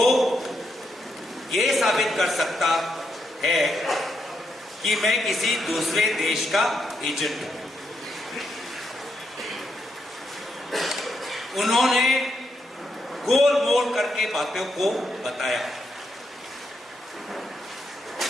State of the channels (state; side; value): normal; both; correlation 0.81